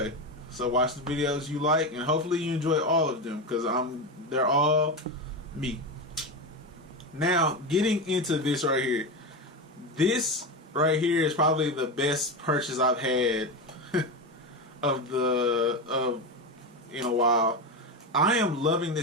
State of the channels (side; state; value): both; normal; correlation 0.17